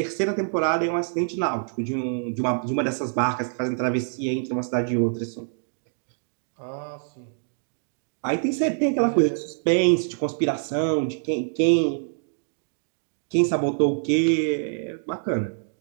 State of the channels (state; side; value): silent; left; digital silence